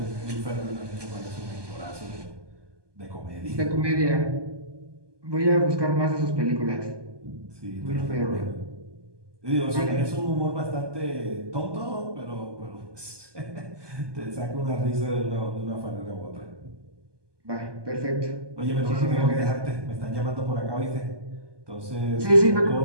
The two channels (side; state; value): left; late; 1.2 ms